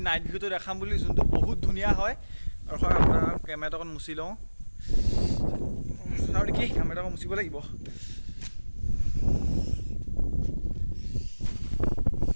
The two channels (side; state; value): both; inverted; correlation -1.00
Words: নাইট ভিউটো দেখাম বুলি যোনটো বহুত ধুনীয়া হয় আৰু আপোনাৰ কেমেৰাটো অকণ মুচি লওঁ আৰু কি কেমেৰাটো অকণ মুচিব লাগিব